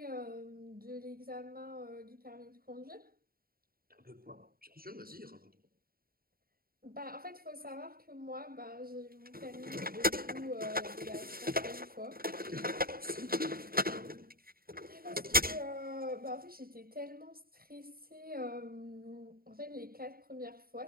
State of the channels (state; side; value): late; left; 0.43 ms